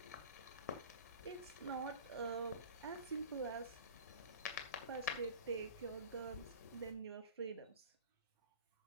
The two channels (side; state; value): both; inverted; correlation -0.37